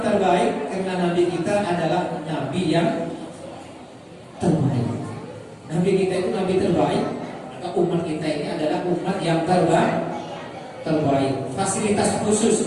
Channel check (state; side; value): identical; both; correlation 1.00